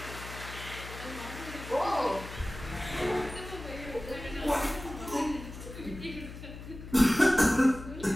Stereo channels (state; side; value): noise; left; hum, 12 dB below the sound